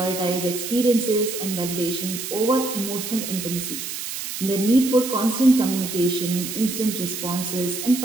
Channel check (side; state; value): right; noise; hiss, 6 dB below the sound